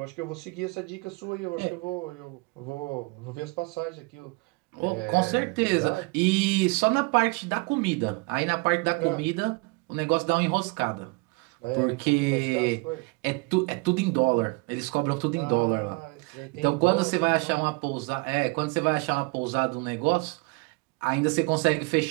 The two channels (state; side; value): quieter; left; 27.6 dB